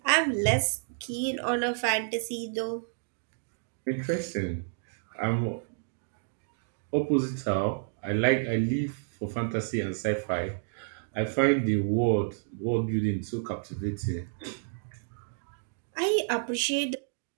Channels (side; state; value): left; silent; digital silence